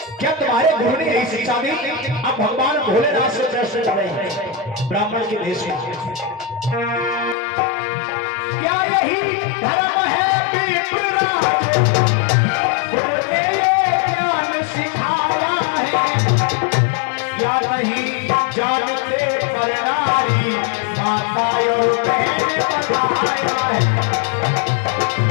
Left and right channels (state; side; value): drops out; right; at 7.4 s